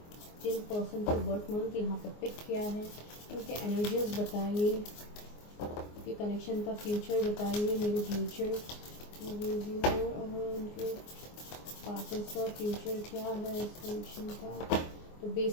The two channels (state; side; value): late; right; 24 ms